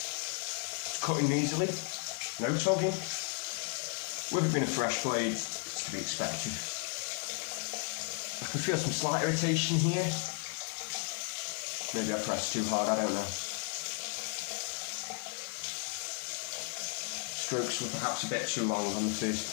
cutting easily, no tugging. With it being a fresh blade, it's to be expected. I can feel some slight irritation here. Maybe I pressed too hard, I don't know. Strokes were perhaps a bit too long on the first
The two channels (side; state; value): right; quieter; 38.6 dB